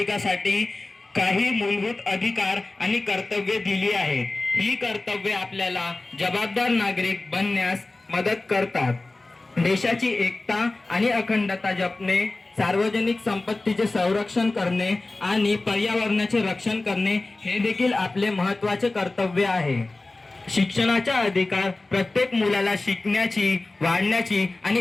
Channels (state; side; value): quieter; right; 3.1 dB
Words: काही मूलभूत अधिकार आणि कर्तव्ये दिली आहेत। ही कर्तव्ये आपल्याला जबाबदार नागरिक बनण्यास मदत करतात। देशाची एकता आणि अखंडता जपणे, सार्वजनिक संपत्तीचे संरक्षण करणे आणि पर्यावरणाचे रक्षण करणे हे देखील आपले महत्त्वाचे कर्तव्य आहे। शिक्षणाचा अधिकार प्रत्येक मुलाला शिकण्याची, वाढण्याची